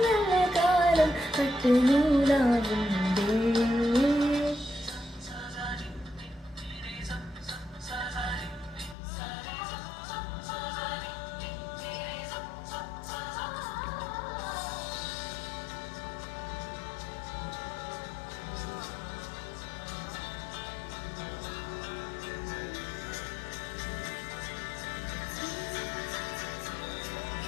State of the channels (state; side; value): drops out; right; at 9.0 s